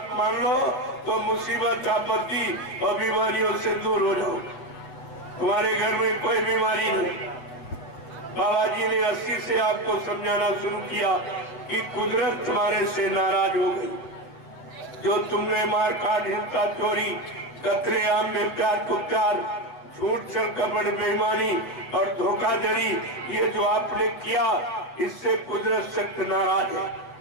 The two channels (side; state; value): right; late; 8.0 ms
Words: मान लो तो मुसीबत, आपत्ति और बीमारियों से दूर हो जाओ। तुम्हारे घर में कोई बीमारी नहीं। बाबा जी ने 80 से आपको समझाना शुरू किया कि कुदरत तुम्हारे से नाराज हो गई। जो तुमने मार काट, हिंसा, चोरी, कतलेआम, बेप्यार कुप्यार, झूठ, छल, कपट, बेईमानी और धोखाधड़ी, ये जो आपने किया, इससे कुदरत सख्त नाराज है